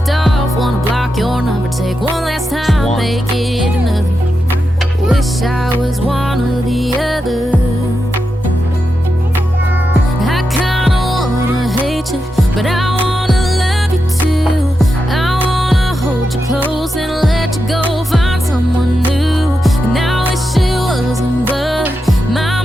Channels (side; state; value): both; normal; correlation 0.87